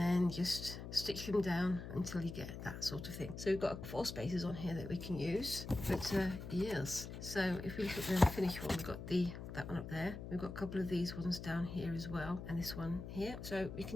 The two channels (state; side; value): noise; left; hum, 9 dB below the sound